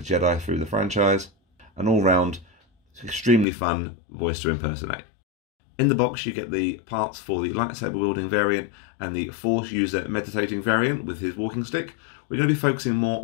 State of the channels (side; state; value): right; drops out; at 3.5 s